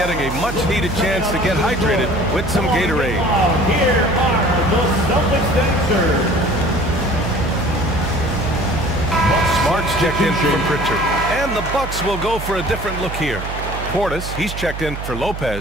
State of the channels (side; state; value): right; noise; hum, 8 dB below the sound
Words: a much-needed chance to get hydrated with some Gatorade. Here are the Celtics dancers. Smart's checked in for Pritchard. And the Bucks will go for a different look here. Portis, he's checked in for